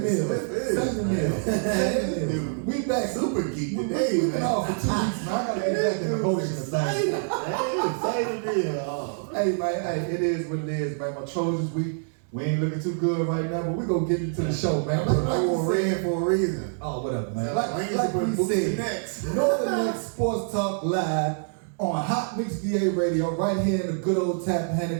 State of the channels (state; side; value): silent; left; digital silence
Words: We back. Super geek today, We've been off for 2 weeks, man. I gotta get back in the motion of things. Hey, man, hey, it is what it is, man. My Trojans, we ain't looking too good right now, but we gonna get into the show, man. I wore red for a reason. Oh, whatever, man. Like we said, Northern X Sports Talk live on Hot Mix VA Radio, right here in the good old